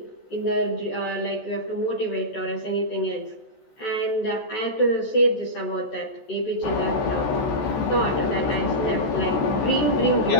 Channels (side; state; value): right; late; 14 ms